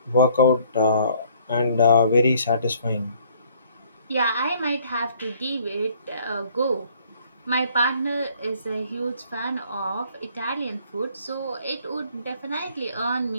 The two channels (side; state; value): both; inverted; correlation -0.60